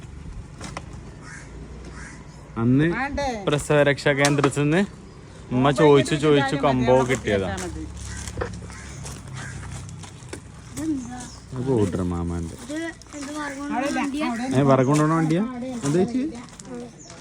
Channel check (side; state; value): both; identical; correlation 1.00